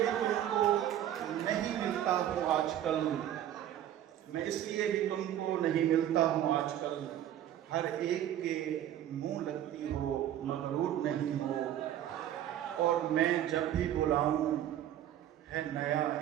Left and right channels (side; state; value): left; quieter; 11.5 dB